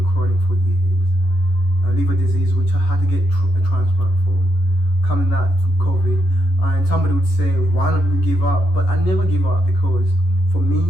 chronic for years. Liver disease, which I had to get a transplant from. Coming that to COVID, and somebody would say, why don't you give up? But I never give up, because for me,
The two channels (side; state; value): right; late; 11 ms